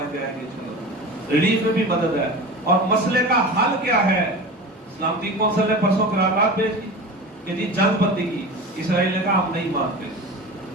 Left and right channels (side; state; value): both; normal; correlation 0.32